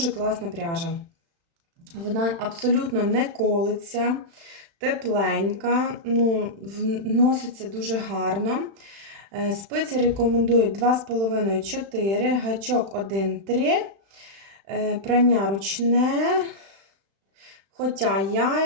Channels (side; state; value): left; late; 36 ms